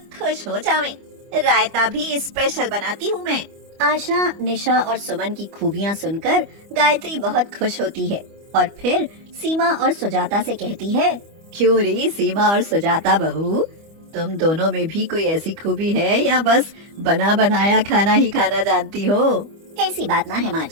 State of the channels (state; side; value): late; left; 25 ms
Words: खुश हो जावें। रायता भी स्पेशल बनाती हूँ मैं। आशा, निशा और सुमन की खूबियाँ सुनकर गायत्री बहुत खुश होती है और फिर सीमा और सुजाता से कहती है, क्यों रे सीमा और सुजाता बहू, तुम दोनों में भी कोई ऐसी खूबी है या बस बना बनाया खाना ही खाना जानती हो? ऐसी बात ना है माँ